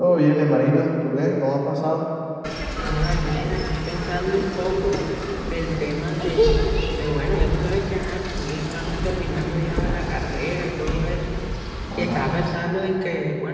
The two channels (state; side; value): identical; both; correlation 1.00